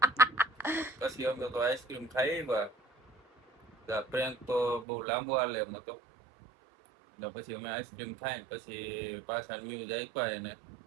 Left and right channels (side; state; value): left; drops out; at 4.9 s